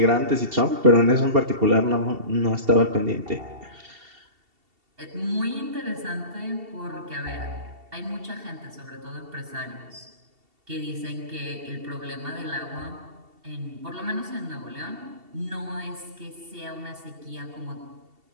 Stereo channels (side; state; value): left; late; 2.7 ms